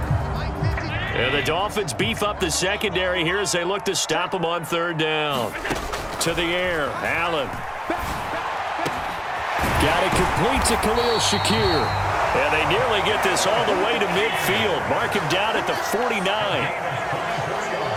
The Dolphins beef up the secondary here as they look to stop them on 3rd down. To the air, Allen. Got it complete to Khalil Shakir. And they nearly get this all the way to midfield. Mark him down at the 49.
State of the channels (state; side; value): identical; both; correlation 1.00